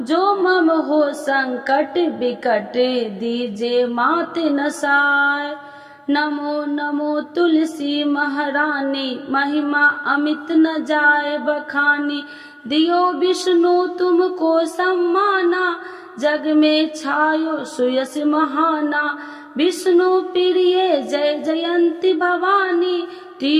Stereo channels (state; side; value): identical; both; correlation 1.00